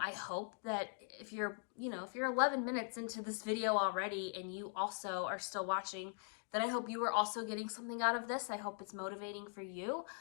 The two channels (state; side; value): silent; right; 50 dB below the other